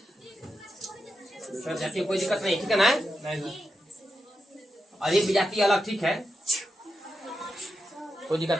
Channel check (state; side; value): normal; both; correlation 0.88